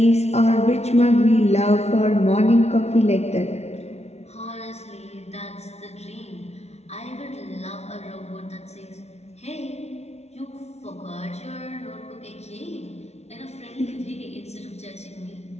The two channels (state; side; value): late; right; 0.31 ms